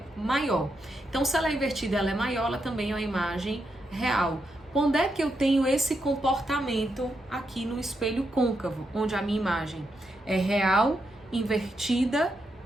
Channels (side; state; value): both; normal; correlation 0.83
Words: maior. Então, se ela é invertida, ela é maior, ela também é uma imagem real. Quando é que eu tenho esse comportamento aqui no espelho côncavo, onde a minha imagem é real, invertida